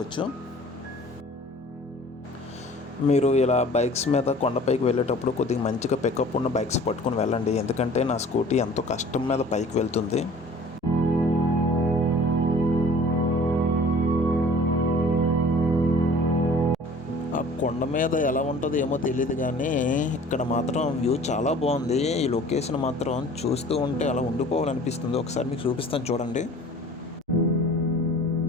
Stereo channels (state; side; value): normal; both; correlation 0.47